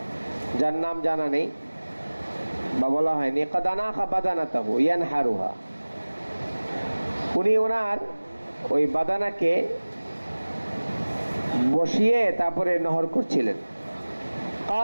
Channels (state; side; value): inverted; both; correlation -1.00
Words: যার নাম জানা নেই বা বলা হয়নি। قد أناخ بدنته ينحرها। উনি ওনার ওই বাদানাকে বসিয়ে তারপরে নহর করছিলেন।